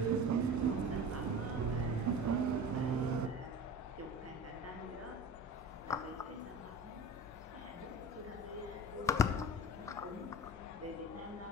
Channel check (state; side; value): normal; both; correlation 0.35